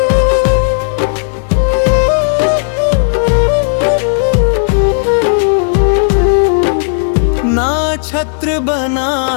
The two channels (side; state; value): right; silent; 73 dB below the other